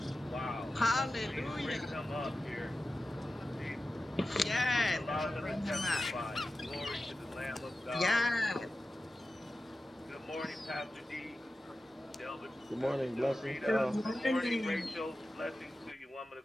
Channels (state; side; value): normal; both; correlation 0.93